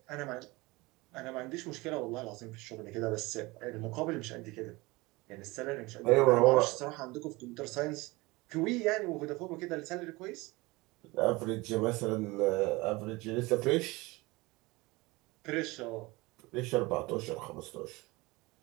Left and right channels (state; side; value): quieter; left; 22.8 dB